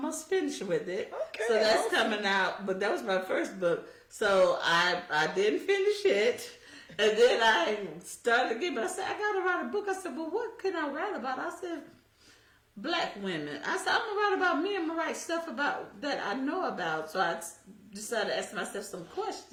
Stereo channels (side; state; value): both; identical; correlation 1.00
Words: finished with it. Okay. So that's coming out. But that was my first book. So I didn't finish it. And then I started again. But I said, I got to write a book. I said, well, what can I write about? I said, Black women. I said, I'm going to write about me. I'm going to write stuff about that I know about. So I decided to ask myself some